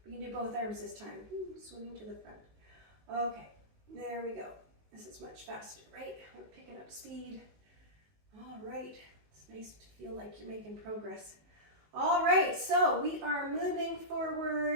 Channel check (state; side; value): late; left; 19 ms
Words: We can do both arms this time. Swimming to the front. Okay, there we go. This is much faster, right? We're picking up speed. All right, it's nice to feel like you're making progress. All right, so we are moving